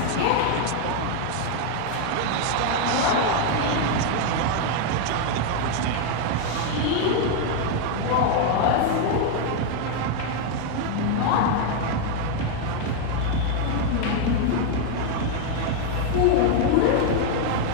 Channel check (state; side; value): different; both; correlation 0.00